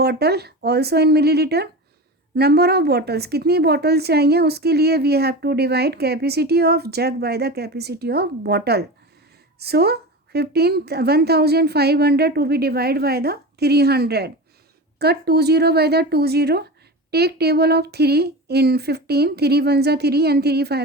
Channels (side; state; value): both; normal; correlation 0.27